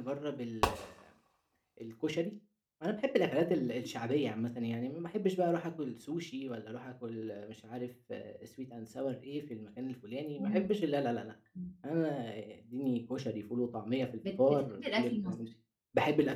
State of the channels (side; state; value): both; identical; correlation 1.00